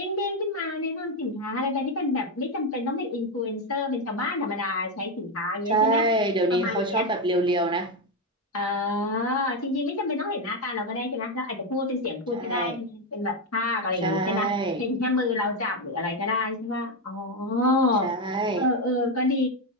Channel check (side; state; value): both; normal; correlation 0.07